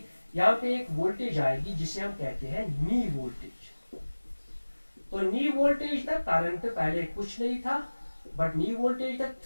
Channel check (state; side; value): inverted; both; correlation -1.00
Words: यहाँ पे एक वोल्टेज आएगी जिसे हम कहते हैं नी वोल्टेज। तो नी वोल्टेज तक करंट पहले कुछ नहीं था, बट नी वोल्टेज तक